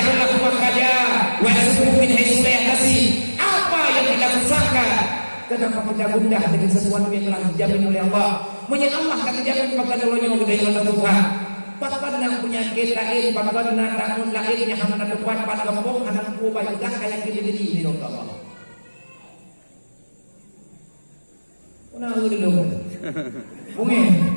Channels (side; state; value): both; inverted; correlation -1.00